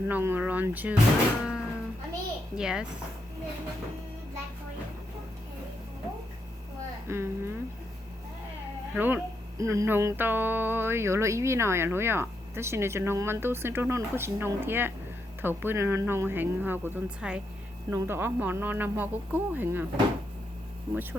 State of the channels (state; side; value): normal; both; correlation 0.81